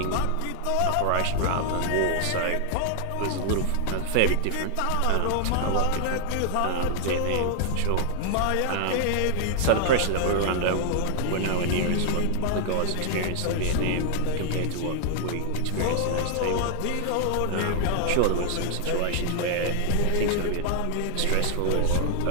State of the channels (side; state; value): both; different; correlation 0.00